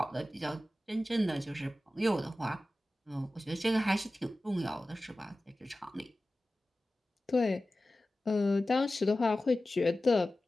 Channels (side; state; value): both; normal; correlation 0.95